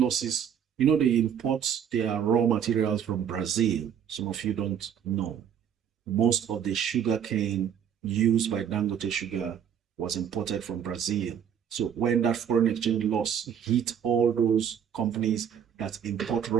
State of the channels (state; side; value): quieter; left; 8.5 dB